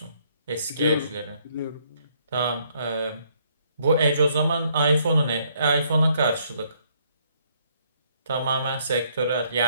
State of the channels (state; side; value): inverted; both; correlation -0.68